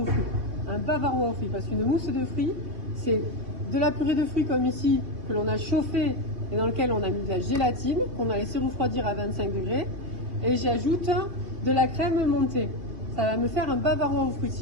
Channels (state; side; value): late; left; 3.0 ms